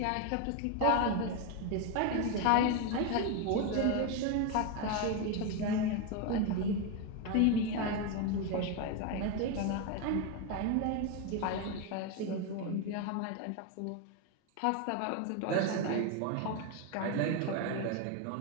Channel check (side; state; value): both; different; correlation 0.02